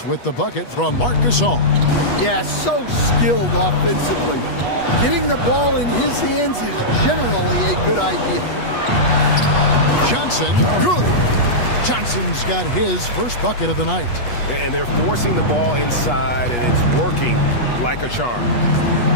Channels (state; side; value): late; right; 8.3 ms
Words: with the bucket from Marc Gasol. Yeah, so skilled offensively. Getting the ball in his hands is generally a good idea. Johnson, good. Johnson's got his first bucket of the night. And they're forcing the ball inside, and it's working like a charm.